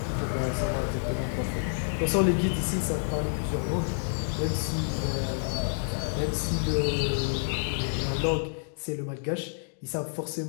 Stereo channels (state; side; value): silent; right; digital silence